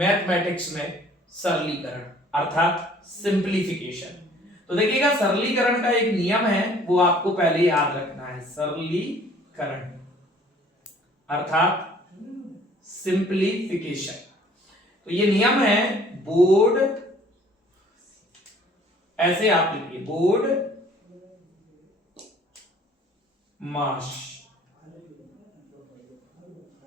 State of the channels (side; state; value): both; normal; correlation 0.55